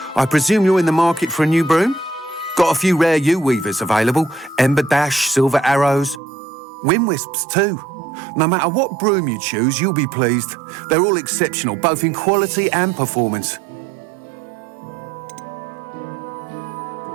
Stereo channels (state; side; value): drops out; left; at 6.2 s